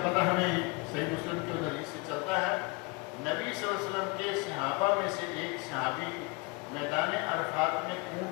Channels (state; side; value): quieter; right; 27.3 dB